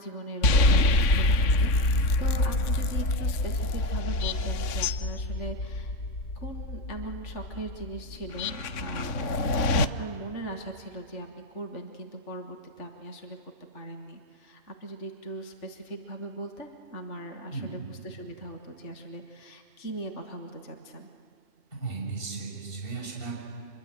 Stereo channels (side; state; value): right; late; 3.5 ms